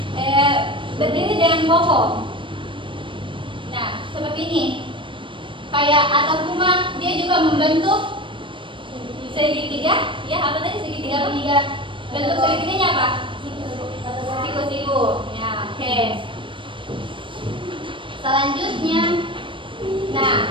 berdiri dengan kokoh. Nah, seperti ini. Kayak atap rumah, dia juga membentuk segitiga. Ya, apa tadi segitiga? Bentuk segitiganya apa? Siku-siku. Ya, oke. Selanjutnya, nah,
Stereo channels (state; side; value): late; left; 0.24 ms